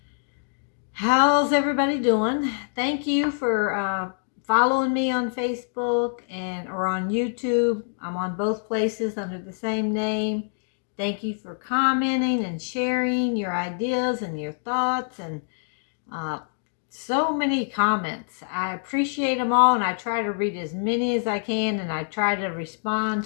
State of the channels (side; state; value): right; silent; digital silence